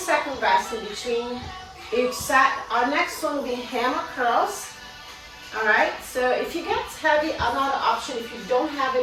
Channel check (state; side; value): identical; both; correlation 1.00